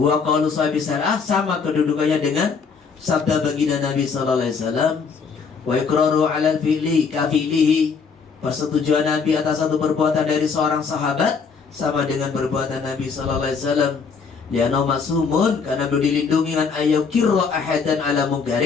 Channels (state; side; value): quieter; right; 5.5 dB